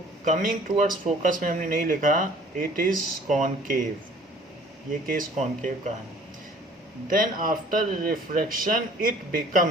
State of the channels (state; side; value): normal; both; correlation 0.53